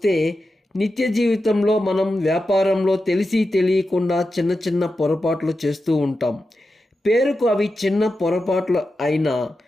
నిత్య జీవితంలో మనం వ్యాపారంలో తెలిసి తెలియకుండా చిన్న చిన్న పొరపాట్లు చేస్తూ ఉంటాం. పేరుకు అవి చిన్న పొరపాట్లు అయినా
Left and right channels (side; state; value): both; normal; correlation 0.90